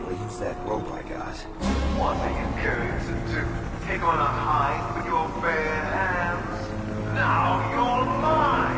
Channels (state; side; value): identical; both; correlation 1.00